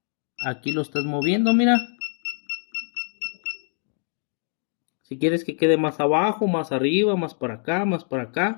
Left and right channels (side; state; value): right; silent; digital silence